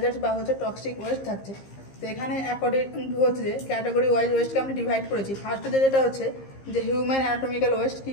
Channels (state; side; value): late; right; 15 ms